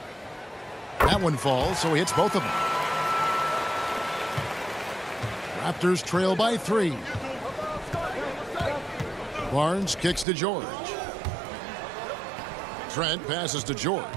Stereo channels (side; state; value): left; drops out; at 10.2 s